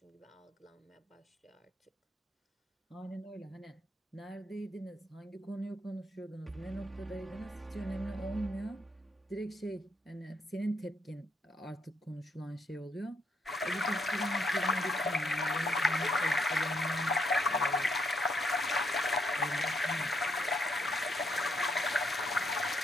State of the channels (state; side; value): normal; both; correlation 0.75